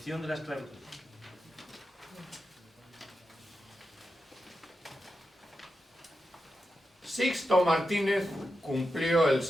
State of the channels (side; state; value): both; normal; correlation 0.89